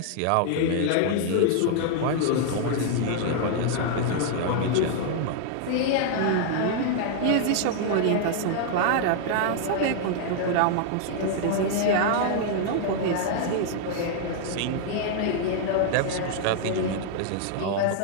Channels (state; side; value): different; both; correlation 0.00